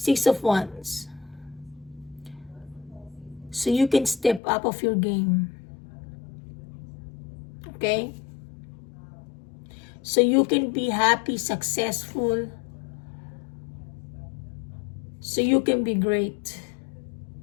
of Wands. So you can step up of your game. Okay? So you can be happy, successful. So you can be great.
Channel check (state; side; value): drops out; right; at 4.4 s